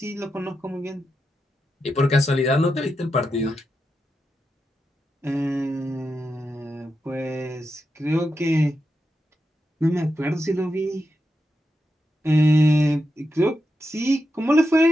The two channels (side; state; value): both; normal; correlation 0.87